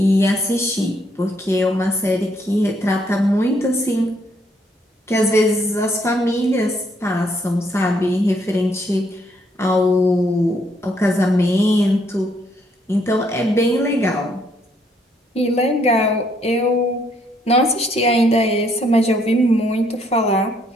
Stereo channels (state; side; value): normal; both; correlation 0.70